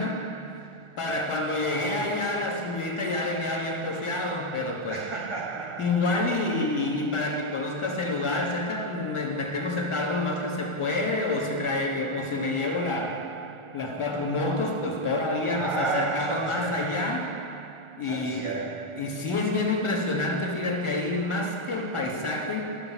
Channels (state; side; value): late; right; 1.4 ms